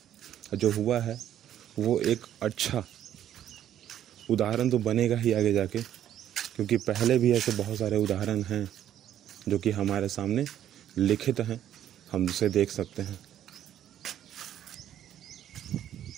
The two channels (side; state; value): left; quieter; 10.9 dB